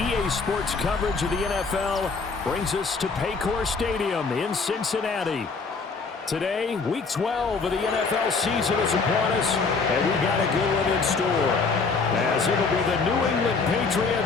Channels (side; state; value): right; quieter; 4.5 dB